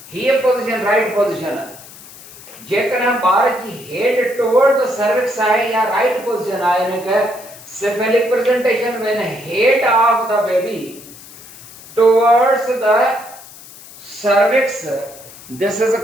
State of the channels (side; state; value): left; noise; hiss, 19 dB below the sound